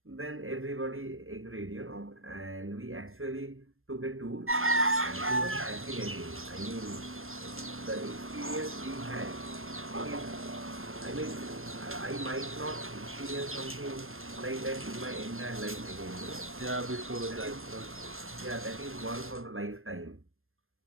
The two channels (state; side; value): late; left; 0.60 ms